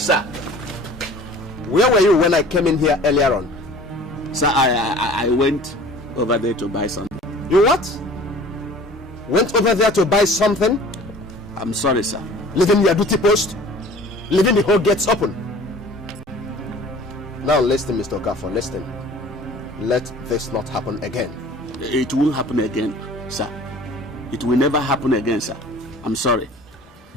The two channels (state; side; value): normal; both; correlation 0.46